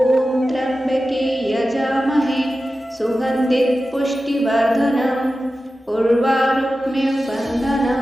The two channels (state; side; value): normal; both; correlation 0.94